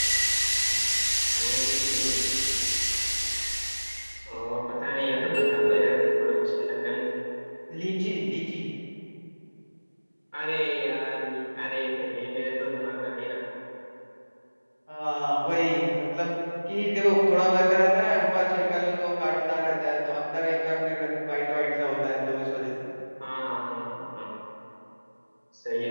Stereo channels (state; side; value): inverted; both; correlation -1.00